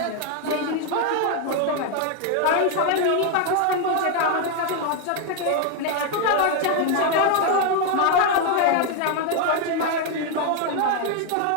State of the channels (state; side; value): different; both; correlation 0.01